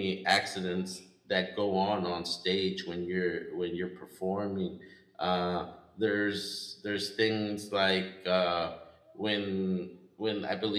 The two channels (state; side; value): identical; both; correlation 1.00